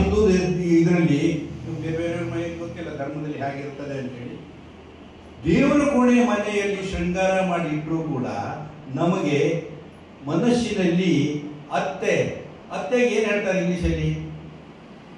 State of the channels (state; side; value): identical; both; correlation 1.00